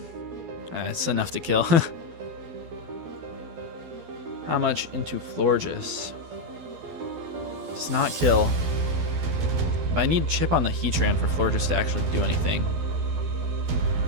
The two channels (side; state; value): left; late; 12 ms